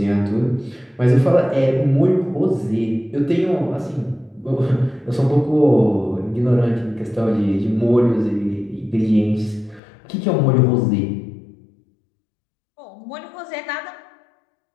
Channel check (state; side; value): drops out; right; at 9.8 s